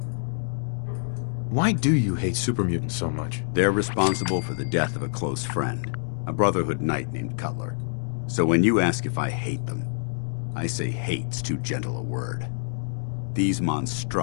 Why do you hate super mutants so much? They're responsible for the death of a close friend, a Brotherhood knight named Cutler. So when you ask if I hate them, I say hate's too gentle a word. These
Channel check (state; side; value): silent; right; 61 dB below the other